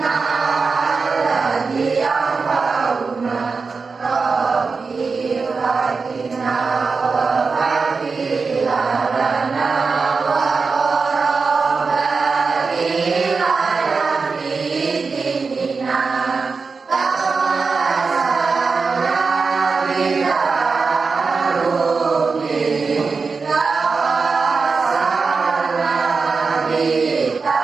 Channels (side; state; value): left; quieter; 4.6 dB